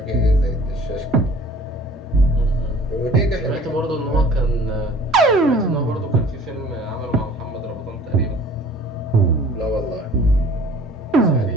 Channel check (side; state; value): both; normal; correlation 0.50